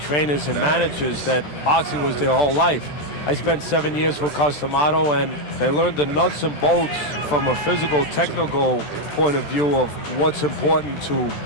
trainers and managers that boxing was their whole life. I spent 7 years with Customato, and I learned the nuts and bolts from a physical, technical point of view of what's important to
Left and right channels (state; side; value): late; right; 14 ms